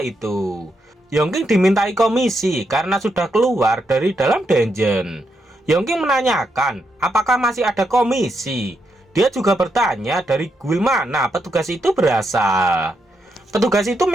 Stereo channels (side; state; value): both; normal; correlation 0.81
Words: itu. Yongking dimintai komisi karena sudah keluar dari dalam dungeon. Yongking menanyakan apakah masih ada komisi. Dia juga bertanya dari guild mana petugas itu berasal. Petugas itu